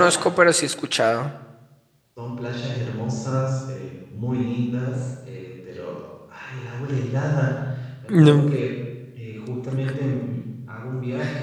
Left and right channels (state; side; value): identical; both; correlation 1.00